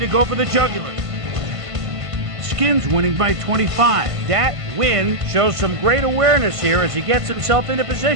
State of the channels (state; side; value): late; left; 1.5 ms